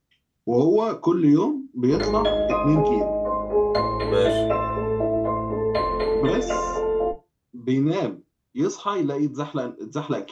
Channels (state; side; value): identical; both; correlation 1.00